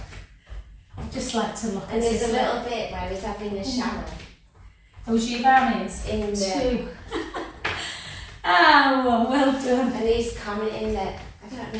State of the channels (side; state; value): both; identical; correlation 1.00